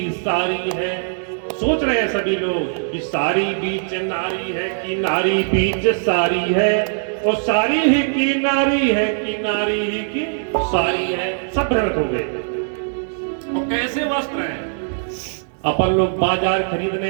सारी है। सोच रहे हैं सभी लोग कि सारी बीच नारी है कि नारी बीच सारी है, और सारी ही की नारी है कि नारी ही की सारी है। सब भ्रमित हो गए। और कैसे वस्त्र हैं? अपन लोग बाजार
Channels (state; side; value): silent; left; digital silence